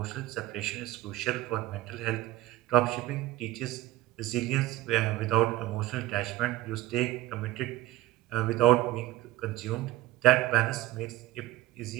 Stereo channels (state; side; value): quieter; left; 15.8 dB